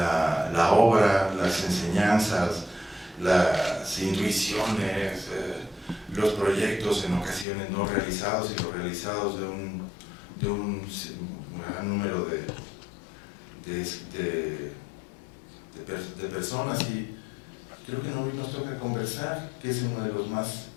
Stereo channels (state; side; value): drops out; right; at 7.5 s